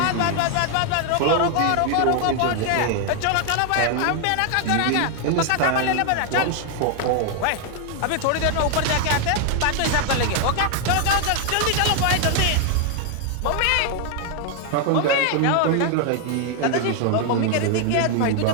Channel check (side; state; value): both; different; correlation 0.00